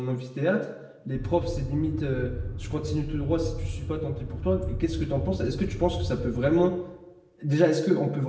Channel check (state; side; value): identical; both; correlation 1.00